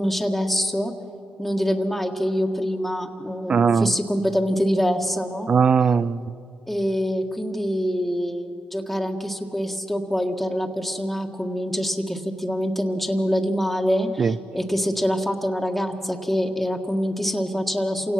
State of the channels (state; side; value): normal; both; correlation 0.90